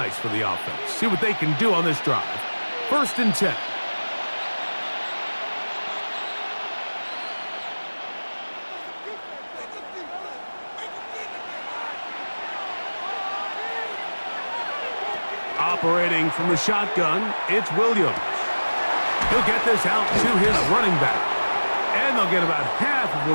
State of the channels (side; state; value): both; inverted; correlation -1.00